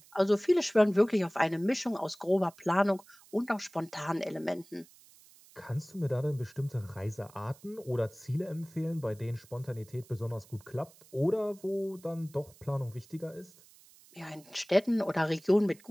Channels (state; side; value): noise; right; hiss, 25 dB below the sound